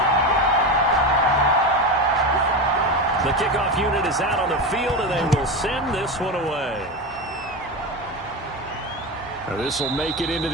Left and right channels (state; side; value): normal; both; correlation 0.20